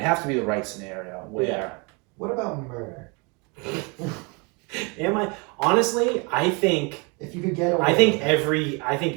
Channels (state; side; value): quieter; left; 31.0 dB